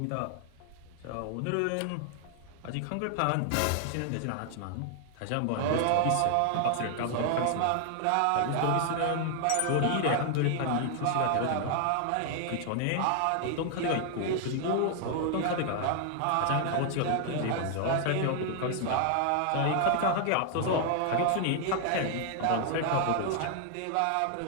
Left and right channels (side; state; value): both; different; correlation 0.00